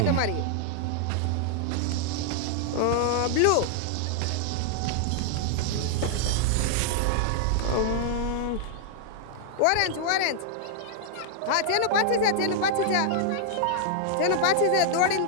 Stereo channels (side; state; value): both; different; correlation -0.01